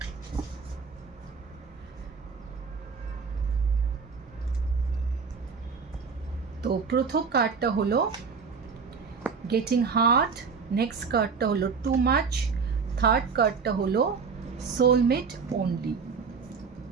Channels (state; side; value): quieter; left; 5.4 dB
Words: তো প্রথম কার্ডটা হলো গেটিং হার্ট, নেক্সট কার্ডটা হলো টু মাচ, থার্ড কার্ডটা হলো সোলমেট অনলি।